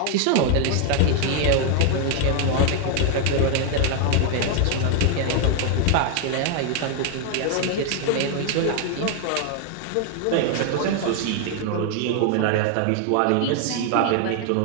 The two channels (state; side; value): different; both; correlation 0.00